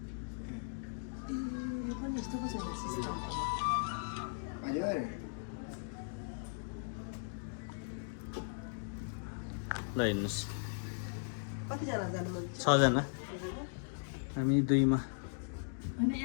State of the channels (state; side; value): silent; right; digital silence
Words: यो पनि यस्तो पो छैन सिस्टम हजुर ल हेर्नुहोस् कतिजना जानु मन 6 जना हामी 2 मा होइन